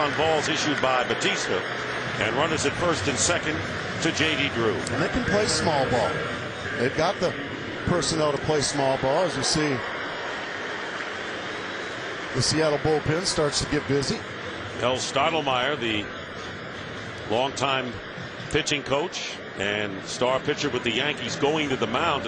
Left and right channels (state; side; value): identical; both; correlation 1.00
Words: balls issued by Batista. And runners at 1st and 2nd to J.D. Drew. And they can play small ball. They've got the personnel to play small ball. As you see, the Seattle bullpen starts to get busy. El Stottlemyre, the longtime pitching coach and star pitcher with the Yankees, going to the mound